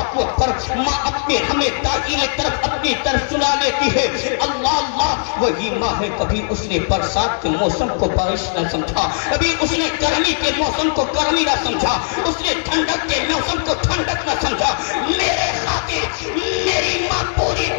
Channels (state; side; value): silent; right; digital silence